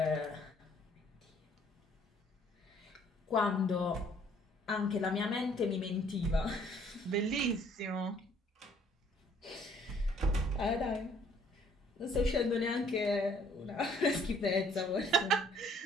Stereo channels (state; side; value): normal; both; correlation 0.61